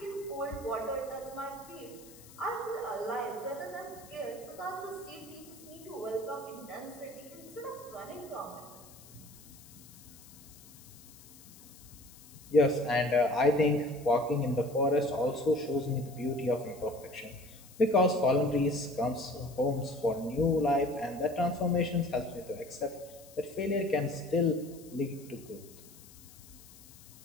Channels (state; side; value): noise; left; hiss, 21 dB below the sound